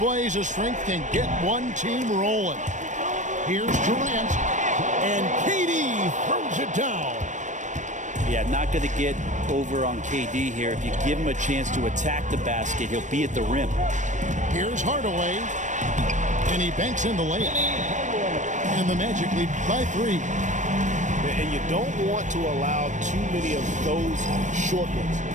of strength can get one team rolling. Here's Durant. And KD throws it down. Yeah, not going to get over on KD here. If you give him a chance to attack the basket, he'll be at the rim. Here's Hardaway. And he banks in the layup. And the Magic lead by 3. And you don't want to allow too many of those short ones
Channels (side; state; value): left; late; 0.35 ms